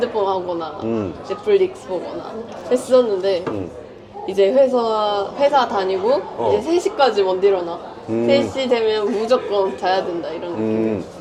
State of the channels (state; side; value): identical; both; correlation 1.00